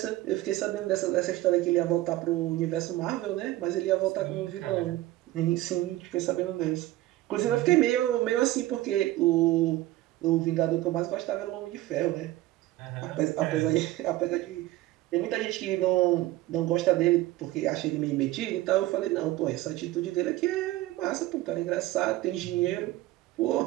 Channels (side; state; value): left; quieter; 16.5 dB